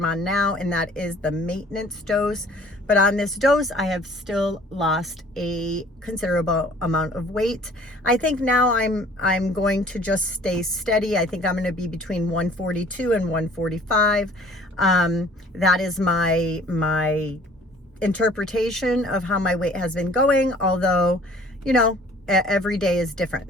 on now, and that is the maintenance dose. But on this dose, I have still lost a considerable amount of weight. I think now I'm going to just stay steady. I think I'm going to be between 142 and 145. That is my interpretation of how my weight has been going, although, you know, every day is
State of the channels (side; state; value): both; normal; correlation 0.52